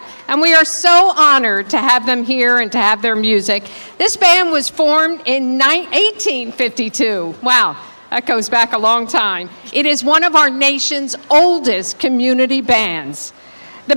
and we are so honored to have them here and to have their music. This band was formed in 1852. Wow, that goes back a long time. It is one of our nation's oldest community bands. The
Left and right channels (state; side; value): inverted; both; correlation -1.00